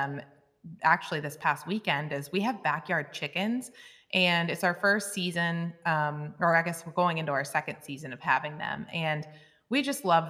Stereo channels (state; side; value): identical; both; correlation 1.00